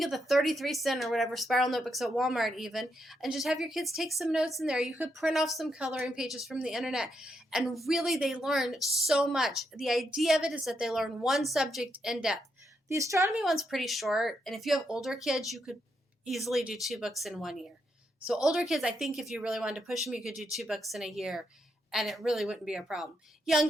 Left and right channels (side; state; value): both; normal; correlation 0.80